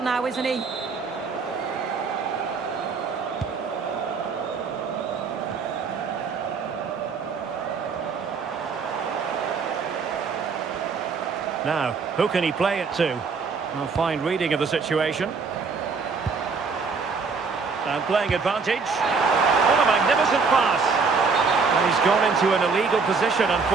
now, isn't he? Now, who can he play it to? A fine reading of the situation. And playing advantage. What a magnificent pass. And he's gone into an illegal position,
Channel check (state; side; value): quieter; left; 4.9 dB